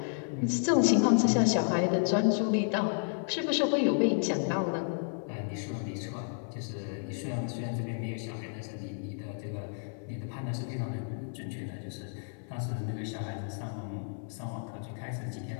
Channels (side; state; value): right; silent; 55 dB below the other